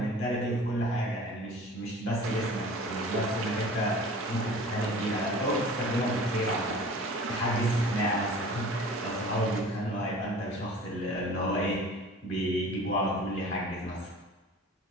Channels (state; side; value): normal; both; correlation 0.43